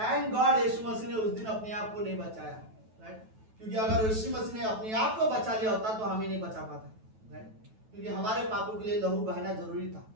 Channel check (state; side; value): late; left; 9.2 ms